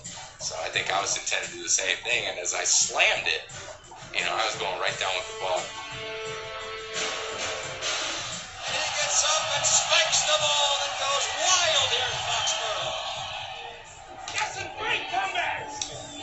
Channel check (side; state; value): both; identical; correlation 1.00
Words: So I think I was intended to do the same thing, and as I slammed it, you know, I was going right down with the ball. And he gets up and spikes the ball and goes wild here in Foxborough. That's a great comeback.